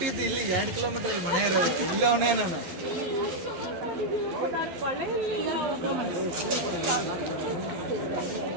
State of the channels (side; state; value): left; late; 12 ms